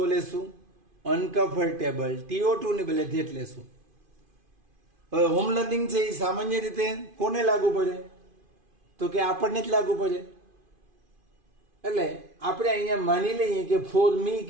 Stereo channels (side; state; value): left; late; 2.5 ms